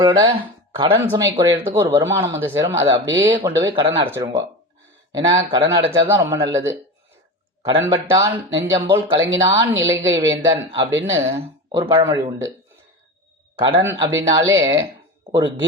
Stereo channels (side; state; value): both; normal; correlation 0.27